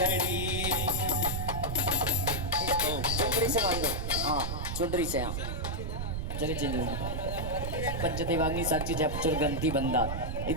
चुंदरी से बांधो, हाँ चुंदरी से, हाँ चलिए चलिए। पंचदेवाग्नि साक्षी जपचुर ग्रंथि बंदा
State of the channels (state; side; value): noise; right; rumble, 3 dB below the sound